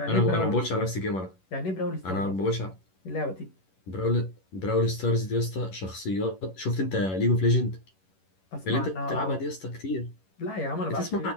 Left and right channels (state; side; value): late; right; 11 ms